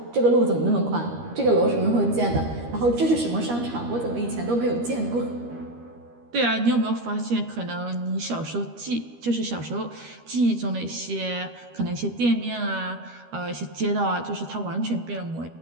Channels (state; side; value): late; left; 13 ms